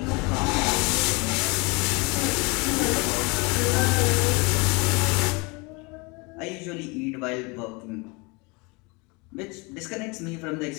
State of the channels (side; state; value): right; quieter; 28.4 dB